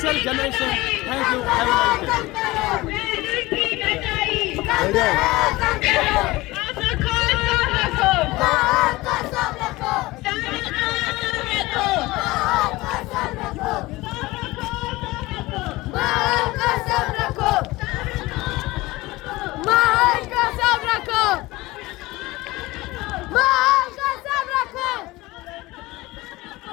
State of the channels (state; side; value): quieter; right; 20.1 dB